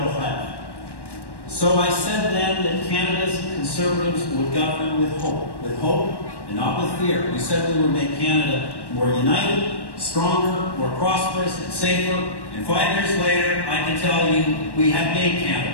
rêves. So I said then that Canada's Conservatives would govern with hope and not with fear. We said we would make Canada more united, stronger, more prosperous, and safer. And 5 years later, I can tell you we have made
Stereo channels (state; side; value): late; right; 1.1 ms